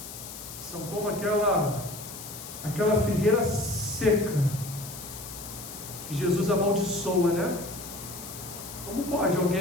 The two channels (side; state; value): left; noise; hiss, 11 dB below the sound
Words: São como aquela figueira seca, que Jesus amaldiçoa, né? Como pode